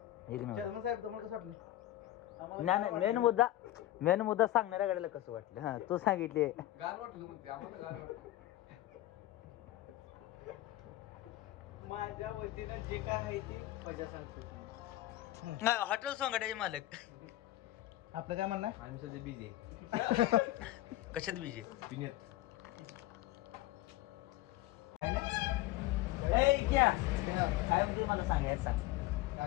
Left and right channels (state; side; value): quieter; right; 15.6 dB